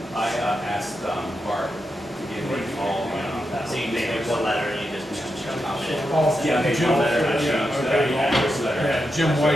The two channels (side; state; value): both; normal; correlation 0.86